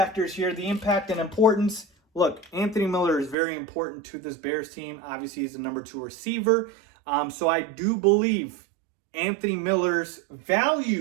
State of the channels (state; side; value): drops out; left; at 3.4 s